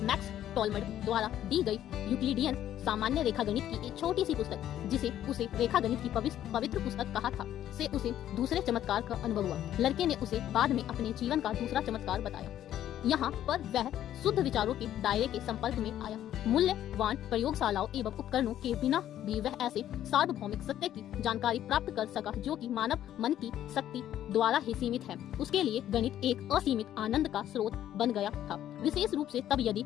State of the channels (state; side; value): quieter; right; 11.7 dB